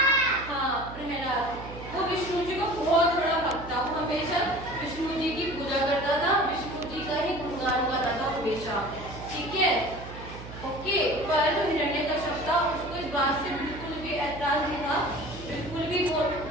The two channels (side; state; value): right; noise; hum, 13 dB below the sound